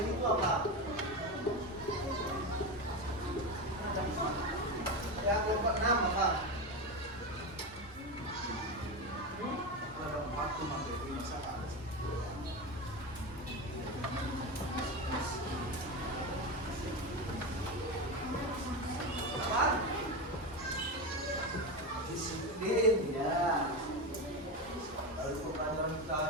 ini itu apa? Ya, kelompok 6 apa? Ada 4 tuh materi masalah. Apa? Disiplin, ya. Lalu pembelajaran kita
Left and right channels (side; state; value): both; normal; correlation 0.17